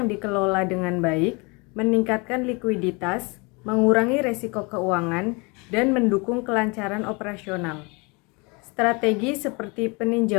dikelola dengan baik meningkatkan likuiditas, mengurangi resiko keuangan, dan mendukung kelancaran operasional. Strategi seperti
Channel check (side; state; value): right; quieter; 28.9 dB